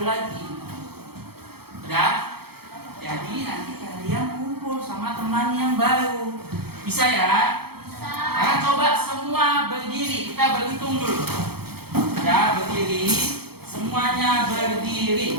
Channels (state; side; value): late; left; 0.96 ms